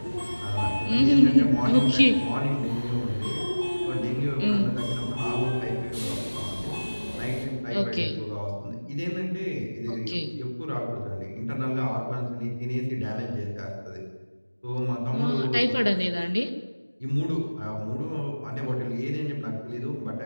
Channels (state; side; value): inverted; both; correlation -1.00